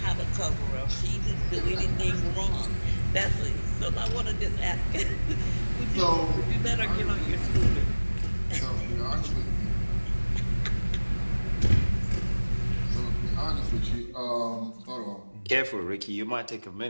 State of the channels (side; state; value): both; inverted; correlation -1.00